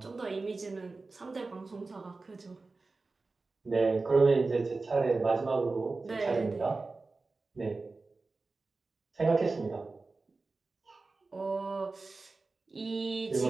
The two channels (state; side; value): quieter; left; 3.7 dB